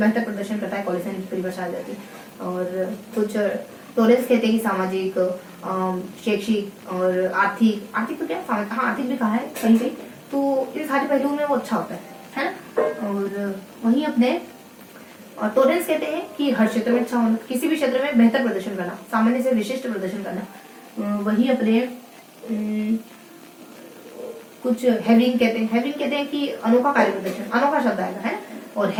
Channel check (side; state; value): both; identical; correlation 1.00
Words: प्रदर्शन करता है, कॉलेज की परिभाषा आ जाती है। और कुछ टॉलरेंस कहते हैं कि सामाजिक, शैक्षिक और आर्थिक तो क्या, हाँ आर्थिक भी कहा है कहीं कहीं, तो इन सारे पहलुओं में वो अच्छा होता है ना। और वहीं अपने टॉलरेंस कहते हैं कि हर क्षेत्र में अच्छा होना, किसी भी क्षेत्र में बेहतर प्रदर्शन करना, सामान्य से विशिष्ट प्रदर्शन करना। वही अपने कुछ हेविंग कहते हैं कि अनोखा कार्य प्रदर्शन, अनोखा शब्द आएगा, है ना। और